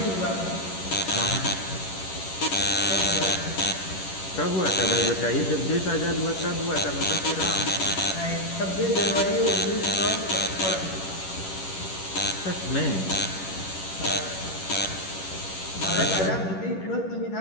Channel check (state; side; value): late; right; 11 ms